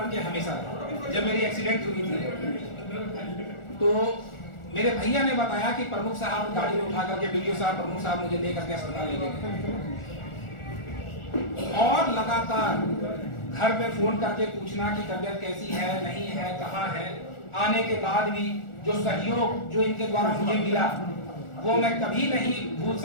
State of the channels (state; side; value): late; right; 1.4 ms